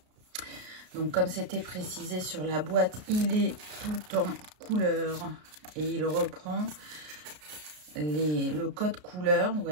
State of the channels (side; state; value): left; late; 33 ms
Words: Donc comme c'était précisé sur la boîte, il est tout en couleur et il reprend le code couleur, vous